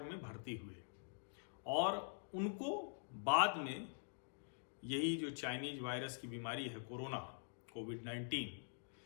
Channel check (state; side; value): silent; right; digital silence